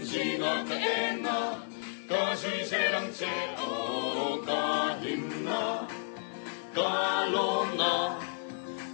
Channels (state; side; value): silent; right; digital silence